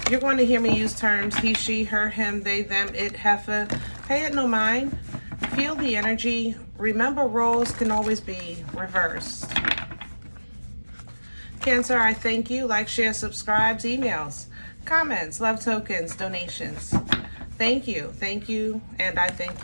You're going to hear me use terms he, she, her, him, they, them, it, heifer. Pay it no mind. Feel the energy. Remember, roles can always be reversed. Cancer, I thank you. Like, share, subscribes, emails, comments, love tokens, donations. Thank you, and I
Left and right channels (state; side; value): inverted; both; correlation -1.00